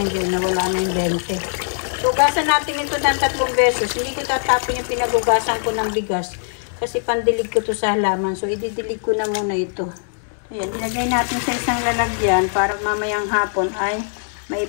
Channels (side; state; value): right; silent; digital silence